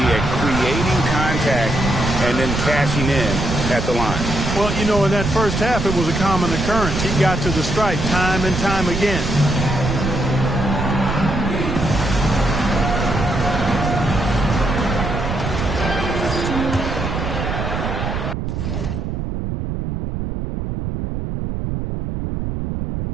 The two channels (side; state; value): right; noise; rumble, 3 dB below the sound